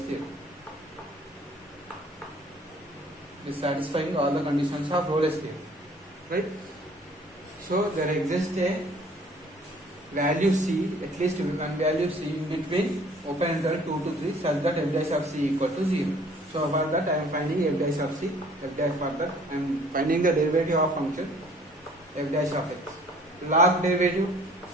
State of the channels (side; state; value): both; normal; correlation 0.55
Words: Is satisfying all the conditions of Rolle's theorem, right? So there exists a value c, at least one value c in between open interval 2 to 3 such that f dash of c equal to 0. So for that I am finding f dash of c, for that I am finding the derivative of function f dash of x. Log derivative